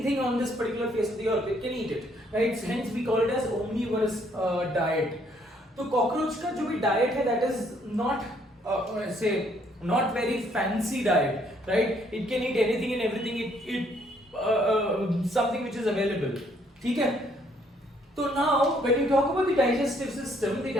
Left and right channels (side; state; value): both; normal; correlation 0.67